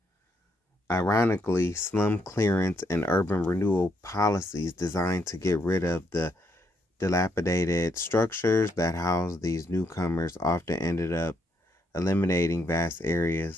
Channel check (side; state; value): both; normal; correlation 0.75